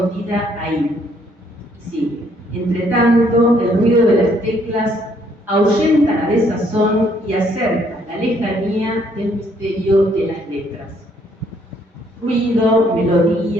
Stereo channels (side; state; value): both; normal; correlation 0.67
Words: ahí. Y sigue: Entre tanto, el ruido de las teclas ahuyenta la desazón y acerca la lejanía del misterio de las letras. Ruido,